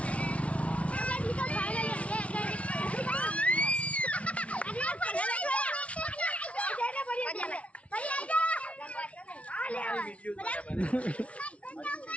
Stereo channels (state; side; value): late; right; 0.063 ms